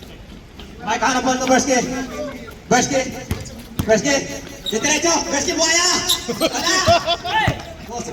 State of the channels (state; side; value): identical; both; correlation 1.00